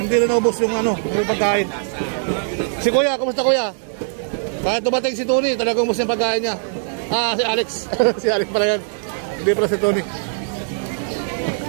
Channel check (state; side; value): silent; left; digital silence